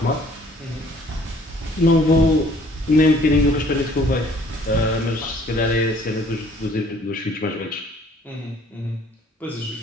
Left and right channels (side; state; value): both; normal; correlation 0.57